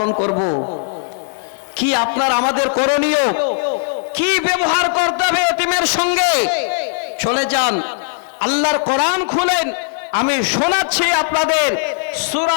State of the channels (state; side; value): silent; right; 68 dB below the other